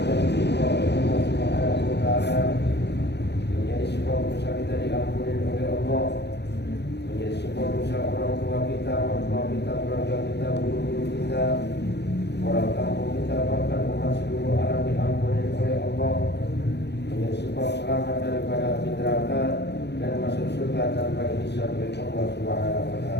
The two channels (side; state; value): right; late; 0.50 ms